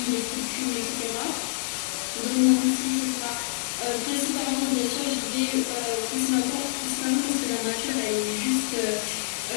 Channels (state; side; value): silent; right; digital silence